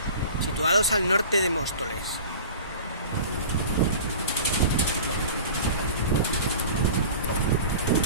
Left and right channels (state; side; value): inverted; both; correlation -0.39